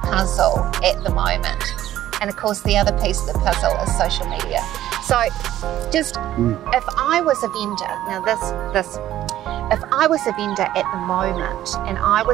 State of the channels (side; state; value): left; quieter; 13.1 dB